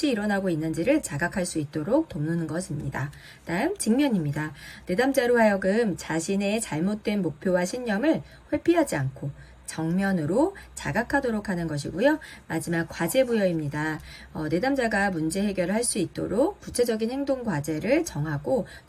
일어나고 있는지를 자각할 수 있도록 돕는 것입니다. 다음 직면입니다. 내담자로 하여금 자신의 잘못된 목표와 신념을 회피하지 않고 정면으로 자각하도록 하는 것이고요. 마지막 과제부여입니다. 내담자가 문제 해결을 할 수 있도록 구체적인 행동 과제를 정하고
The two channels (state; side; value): identical; both; correlation 1.00